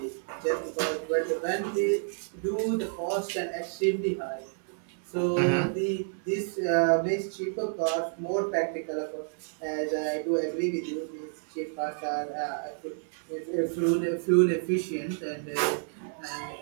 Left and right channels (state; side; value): silent; left; digital silence